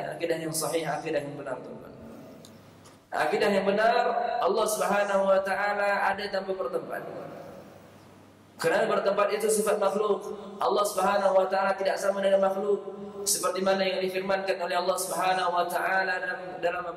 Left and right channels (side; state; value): both; identical; correlation 1.00